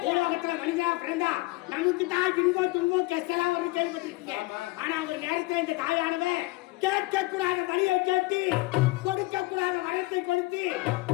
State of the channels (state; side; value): quieter; right; 21.8 dB